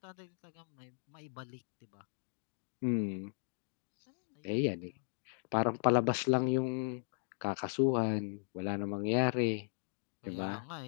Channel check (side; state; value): right; silent; digital silence